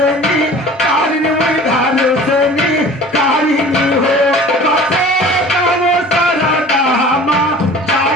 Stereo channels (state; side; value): normal; both; correlation 0.44